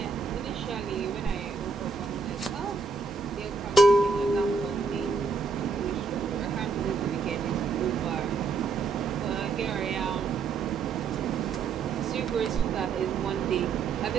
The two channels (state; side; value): quieter; left; 4.7 dB